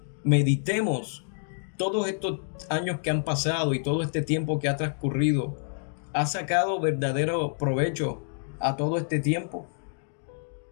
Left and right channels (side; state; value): right; silent; digital silence